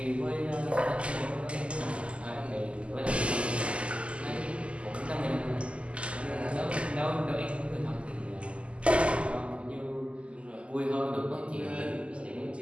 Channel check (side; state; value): left; late; 0.056 ms